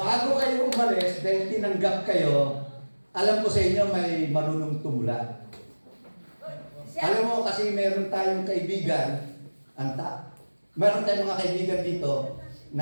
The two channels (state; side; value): inverted; both; correlation -1.00